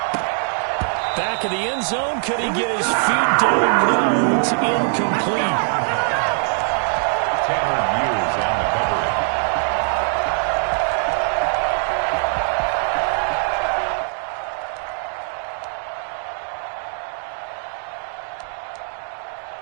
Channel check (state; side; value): silent; left; 57 dB below the other